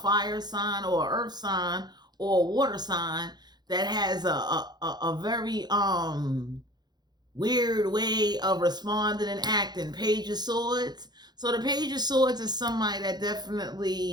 sign, or an earth sign, or a water sign that has a very weird way of responding and acting. Page of Swords. So the Page of Swords is somebody that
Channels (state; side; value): late; left; 0.20 ms